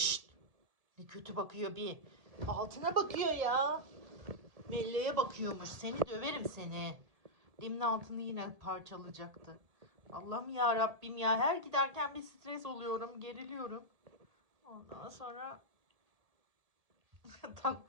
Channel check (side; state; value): left; late; 1.7 ms